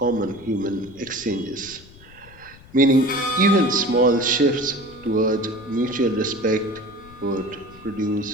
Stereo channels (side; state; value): left; noise; rumble, 22 dB below the sound